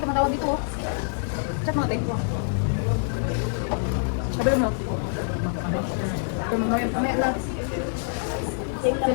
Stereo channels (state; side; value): silent; right; 61 dB below the other